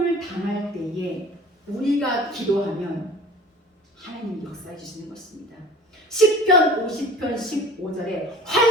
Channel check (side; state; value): both; normal; correlation 0.44